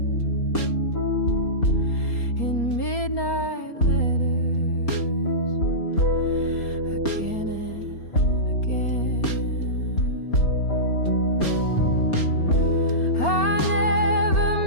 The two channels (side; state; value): right; late; 4.3 ms